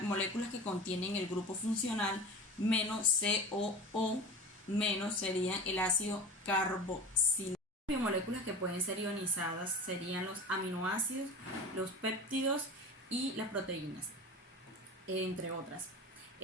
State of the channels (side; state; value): both; normal; correlation 0.33